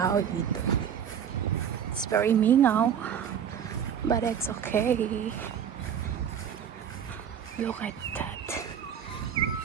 dito. It's very mingaw. But it's okay. Look at that.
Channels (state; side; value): quieter; left; 8.4 dB